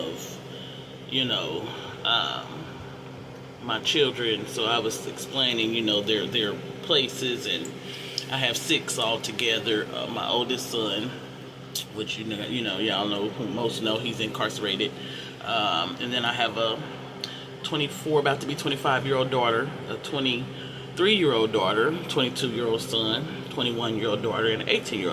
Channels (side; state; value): both; identical; correlation 1.00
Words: you know, um, my children. So I was explaining, their places, and I have six altogether. My oldest son, which y'all know, who most know, he's incarcerated, and then I have a 24, about to be 25-year-old daughter, a 23-year-old daughter, 22-year-old son, 21-year-old daughter, and an